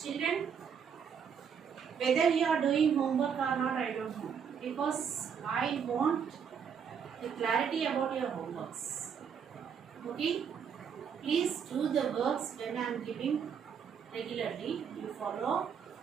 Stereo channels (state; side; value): quieter; left; 7.2 dB